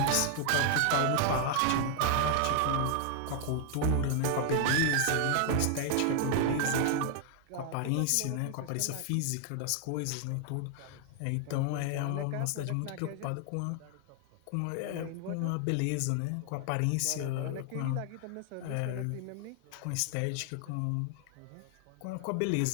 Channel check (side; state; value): both; different; correlation 0.00